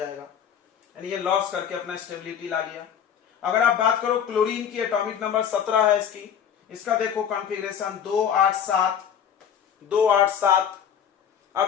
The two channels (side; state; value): right; quieter; 8.5 dB